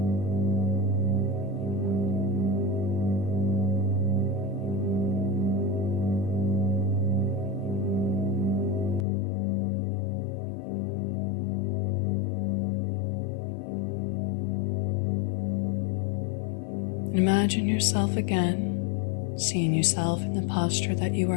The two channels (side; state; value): right; drops out; at 9.1 s